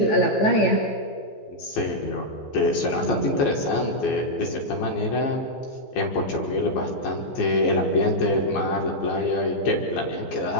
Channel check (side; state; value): right; late; 15 ms